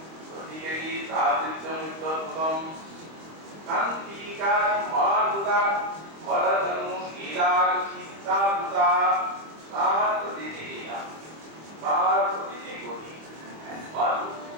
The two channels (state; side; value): late; left; 25 ms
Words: রতিকেরি সাধুত্যমুত্তরগতম কান্তিকা মহাদ্ভুতা বরদনু লীলাগতি সাধুতা তার প্রতিটি লীলা, তার প্রতিটি গতি